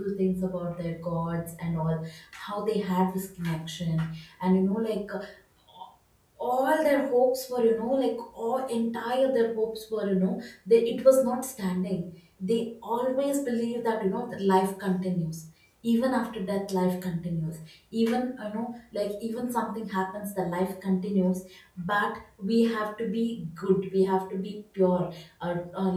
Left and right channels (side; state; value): both; identical; correlation 1.00